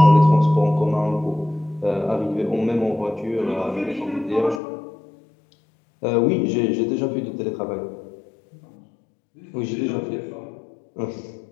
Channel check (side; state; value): right; drops out; at 4.6 s